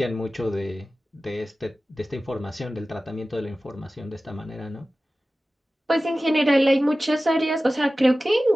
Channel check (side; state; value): both; normal; correlation 0.96